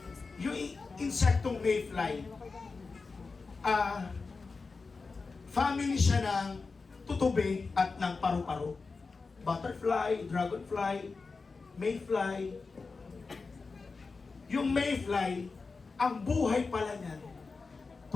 Yung insektong mayfly, family siya ng tutube at ng paru-paro. Butterfly, dragonfly, mayfly. Yung mayfly, ang buhay pala niyan,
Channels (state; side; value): quieter; right; 4.3 dB